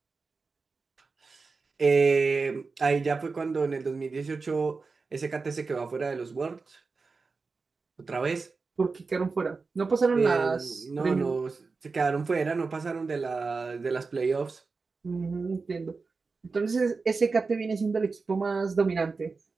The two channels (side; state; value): left; quieter; 4.3 dB